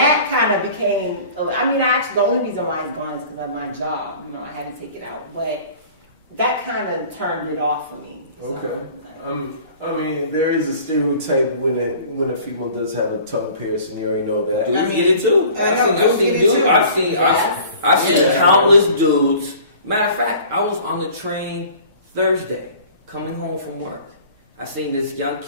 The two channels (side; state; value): both; inverted; correlation -0.47